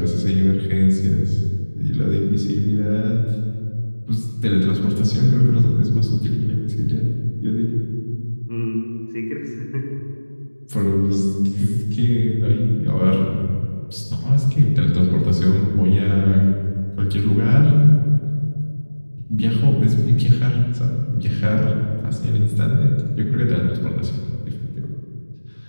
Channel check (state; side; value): inverted; both; correlation -1.00